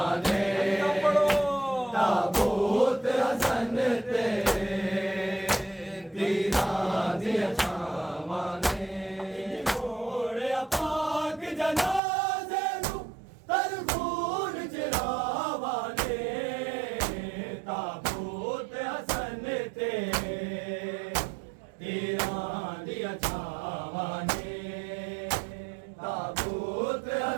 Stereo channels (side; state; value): left; drops out; at 12.0 s